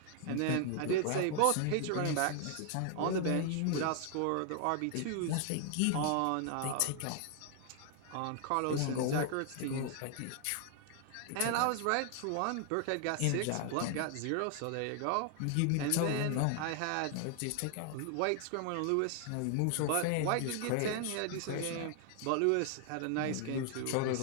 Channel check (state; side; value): different; both; correlation 0.00